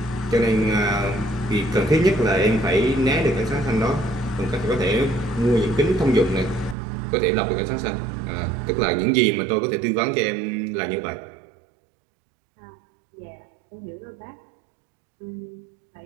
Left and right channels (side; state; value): left; drops out; at 6.8 s